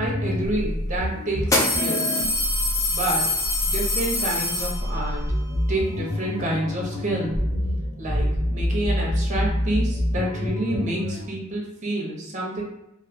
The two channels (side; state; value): both; normal; correlation 0.54